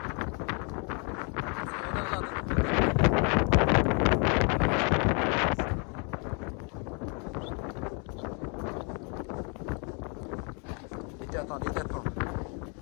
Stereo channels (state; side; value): quieter; right; 36.2 dB